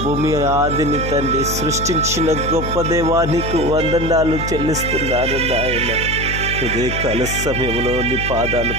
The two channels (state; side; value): noise; left; hum, 5 dB below the sound